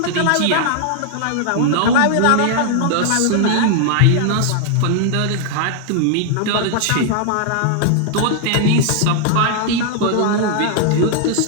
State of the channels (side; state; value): both; different; correlation 0.00